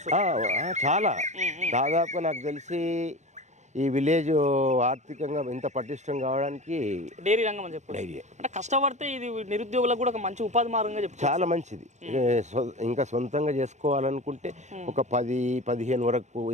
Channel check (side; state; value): left; late; 0.34 ms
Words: చాలా దాదాపుగా నాకు తెలిసి ఈ విలేజ్ ఆర్థికంగా ఇంత పటిష్టం కావడానికి డైరీ రంగం అని చెప్పి డైరీ అంటే కష్టపడితే ఇది నిరుద్యోగులకు కూడా ఒక మంచి ఉపాధి మార్గంగా చెప్పి చాలా మంచిది. ఇంకా సొంతంగా చేసుకోవాలనుకుంటే ఒక 10-15 వరకు